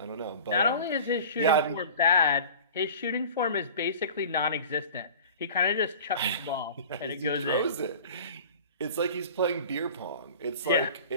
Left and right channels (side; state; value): both; inverted; correlation -0.41